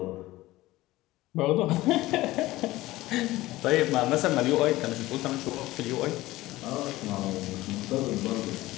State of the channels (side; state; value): right; quieter; 17.8 dB